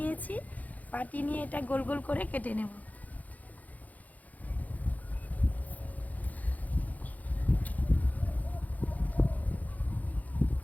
বাটি নিয়ে এটা গোল গোল করে কেটে নেব।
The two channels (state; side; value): late; right; 0.078 ms